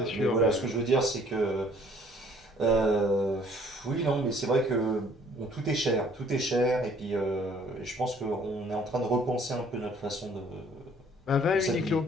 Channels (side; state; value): both; normal; correlation 0.58